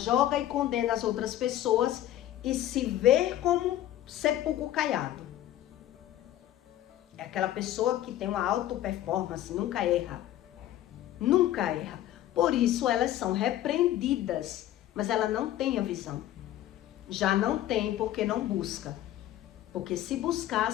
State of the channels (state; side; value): quieter; right; 13.1 dB